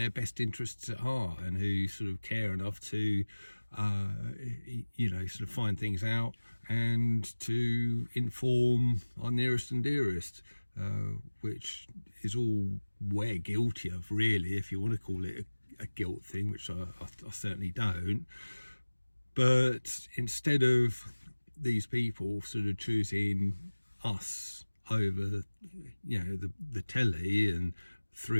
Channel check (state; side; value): inverted; both; correlation -1.00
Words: best interests at heart and who sort of care enough to sort of find things out and to inform our nearest and dearest, which is all we're guilty of, really, if you want to call it a guilt thing, which I certainly don't. But instead of these people sort of choosing us over, the telly, and